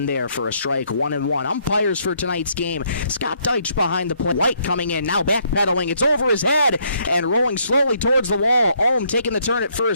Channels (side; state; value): both; inverted; correlation -0.70